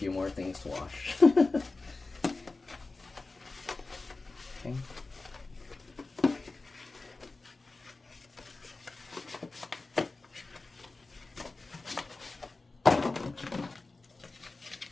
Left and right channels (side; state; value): right; quieter; 3.5 dB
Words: more things to wash. Okay.